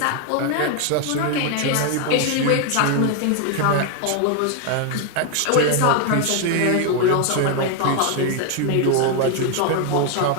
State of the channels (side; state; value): both; different; correlation 0.01